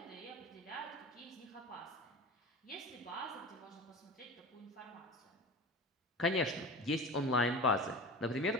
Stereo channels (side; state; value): both; normal; correlation 0.33